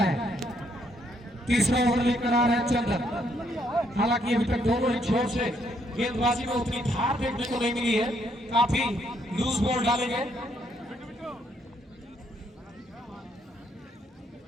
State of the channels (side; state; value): both; normal; correlation 0.72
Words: तीसरा ओवर लेकर आ रहे हैं चंदन, हालांकि अभी तक दोनों ही छोर से गेंदबाजी में उतनी धार देखने को नहीं मिली है, काफी लूज बॉल डाले गए।